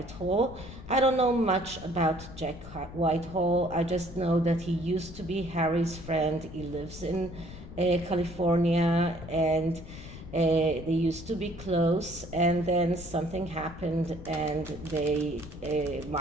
I don't know much about Jack Whitehall. I just know that he used to be Harry's friend. He lives in California, and they used to be close, and then something happened and they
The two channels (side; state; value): left; noise; rumble, 14 dB below the sound